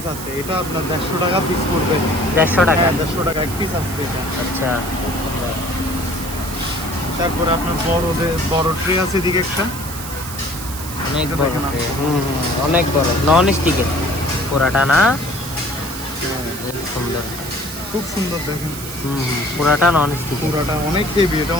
আছে। এটা আপনার 150 টাকা পিস পড়বে। 150 টাকা। হ্যাঁ, 150 টাকা এক পিস আছে এটা। আচ্ছা তারপরে আপনার বড় ট্রে আছে এদিকে একটা। অনেক এটা বড় দেখেন tray। আপনি। অনেক বড় নন স্টিকের পুরাটা না? খুব সুন্দর। খুব সুন্দর দেখেন। পুরাটা নন স্টিক। পুরাটা অনেক হেভি, এটা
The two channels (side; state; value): right; noise; hiss, 10 dB below the sound